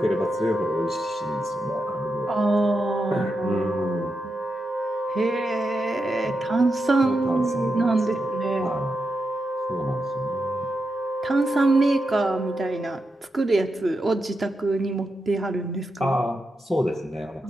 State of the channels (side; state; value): both; normal; correlation 0.87